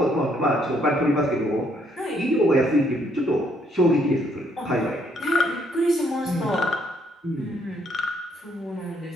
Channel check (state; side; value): normal; both; correlation 0.70